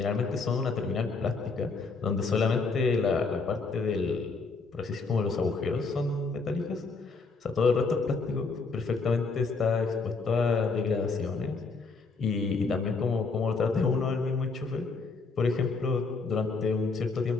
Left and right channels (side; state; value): right; quieter; 4.2 dB